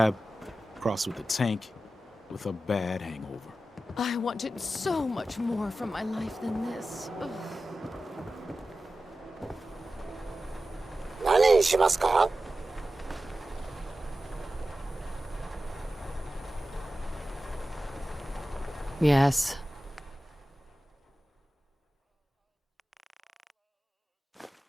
crossed with a tank, with a bad hangover. I wanted so much more from my life than this. Ugh. 何にしますか? Yes.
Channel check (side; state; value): both; normal; correlation 0.94